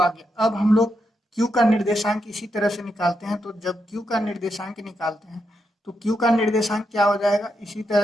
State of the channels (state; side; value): normal; both; correlation 0.83